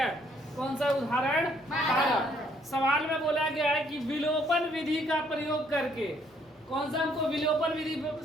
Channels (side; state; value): both; normal; correlation 0.67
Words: कौन सा उदाहरण? 12। सवाल में बोला गया है कि विलोपन विधि का प्रयोग करके, कौन सा हमको विलोपन विधि